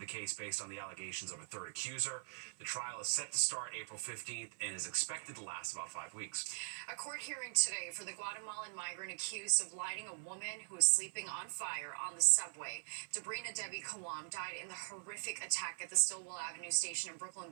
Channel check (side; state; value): left; silent; 50 dB below the other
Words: case based on the allegations of a third accuser. The trial is set to start April 15th and is expected to last about 5 weeks. A court hearing today for the Guatemalan migrant accused of lighting a woman who was sleeping on fire on the subway. Debrina Debbie Kawam died in the horrific attack at the Stillwell Avenue station in Brooklyn